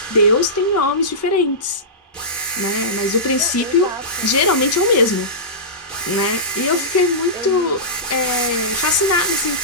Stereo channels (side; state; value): both; normal; correlation -0.18